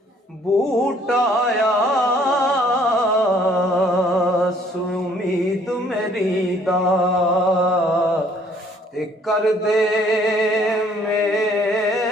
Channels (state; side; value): normal; both; correlation 0.61